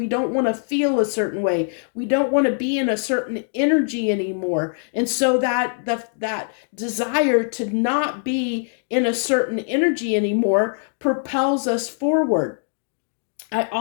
don't want to feel a certain way. We don't want to be in a certain energy anymore. And so that desire to not be in a certain energy anymore propels us forward. I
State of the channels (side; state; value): right; silent; digital silence